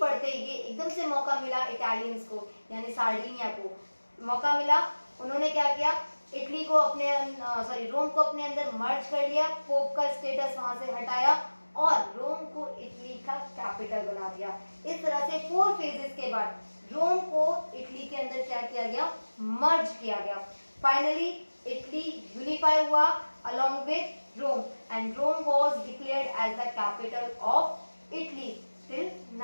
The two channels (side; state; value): both; inverted; correlation -1.00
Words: ये एकदम से मौका मिला इटालियंस को, यानी सार्डिनिया को मौका मिला। उन्होंने क्या किया? इटली को रोम को अपने अंदर मर्ज कर लिया, पोप का स्टेटस वहां से हटाया और रोम को इटली का कैपिटल बना दिया। इस तरह से 4 फेजेस के बाद रोम को इटली के अंदर क्या किया गया? मर्ज किया गया। फाइनली इटली यूनिफाई हुआ along with Rome, and Rome was declared as the capital of Italy till